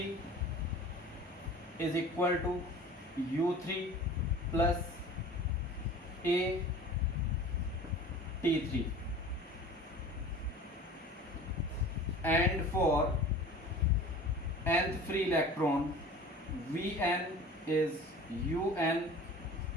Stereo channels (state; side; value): normal; both; correlation 0.41